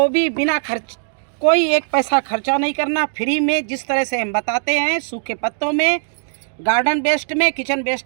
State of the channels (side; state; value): left; silent; digital silence